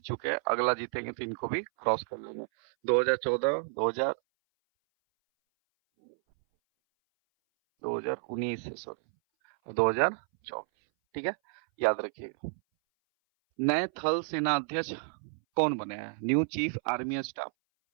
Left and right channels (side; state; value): left; silent; 57 dB below the other